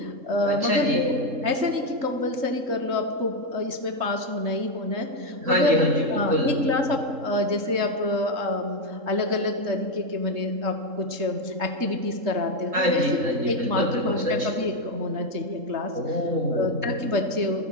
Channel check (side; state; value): left; late; 3.7 ms